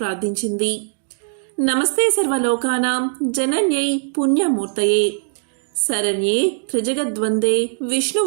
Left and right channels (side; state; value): left; silent; 66 dB below the other